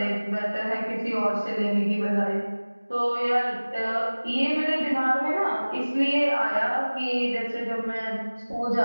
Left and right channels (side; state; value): both; inverted; correlation -1.00